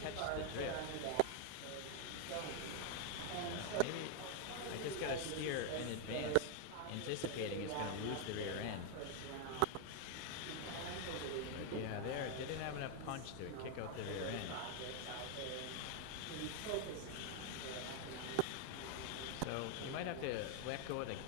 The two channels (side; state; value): both; different; correlation 0.01